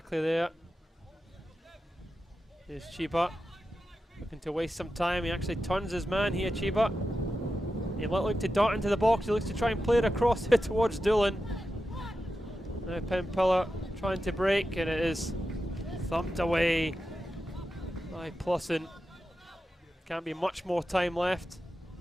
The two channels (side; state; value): both; normal; correlation 0.91